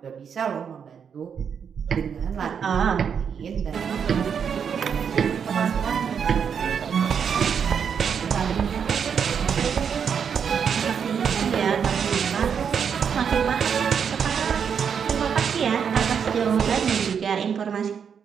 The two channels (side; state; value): left; quieter; 7.2 dB